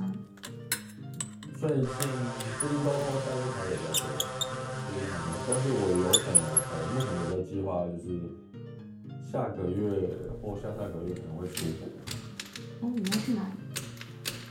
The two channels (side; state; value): both; identical; correlation 1.00